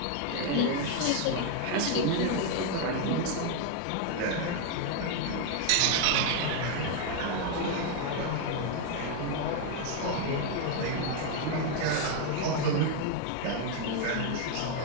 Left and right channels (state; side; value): different; both; correlation 0.01